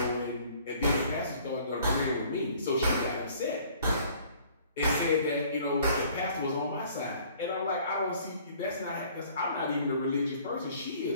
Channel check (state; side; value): inverted; both; correlation -0.55